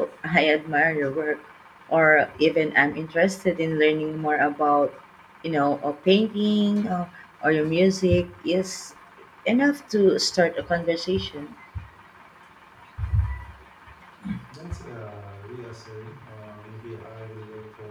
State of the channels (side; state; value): both; identical; correlation 1.00